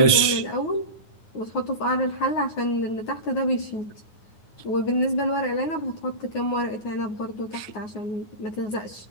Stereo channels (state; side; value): late; right; 9.5 ms